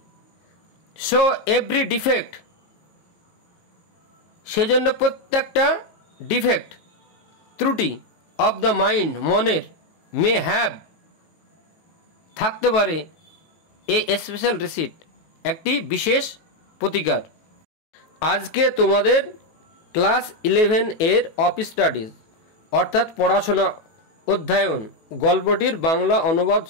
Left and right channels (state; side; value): late; right; 18 ms